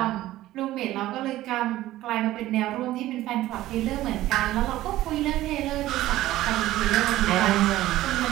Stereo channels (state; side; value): quieter; left; 15.3 dB